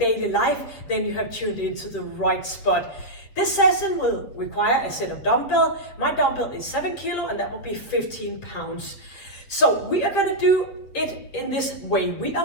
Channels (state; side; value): late; right; 7.9 ms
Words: life, then you have tuned into the right spot. This session will require a set of dumbbell. My dumbbell is 7 kilo and that will be 15 pounds. So we are gonna do it in this way. We